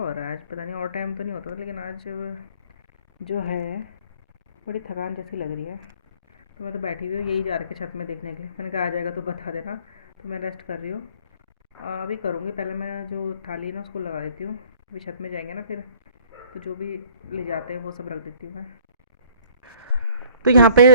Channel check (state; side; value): inverted; both; correlation -0.54